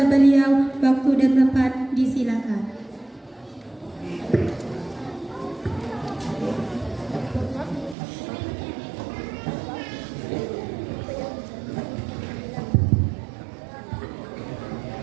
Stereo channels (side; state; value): left; drops out; at 8.0 s